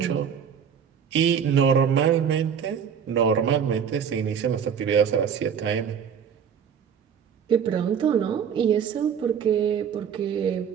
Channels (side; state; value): left; quieter; 7.6 dB